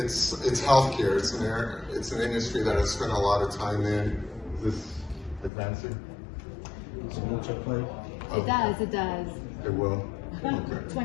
healthcare. It's an industry that has spent a lot of time in. Is this advancing? It does, it does. It will? Okay.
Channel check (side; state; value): right; drops out; at 5.5 s